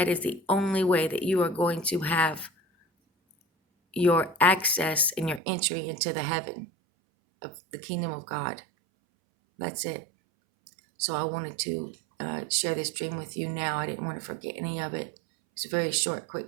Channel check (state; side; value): drops out; left; at 5.4 s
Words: is the only way that you are going to have your access and your entry into the heaven of the kingdom of God. That's it. So I wanted to share this dream with you now. I didn't want to forget any of it. It's a very short,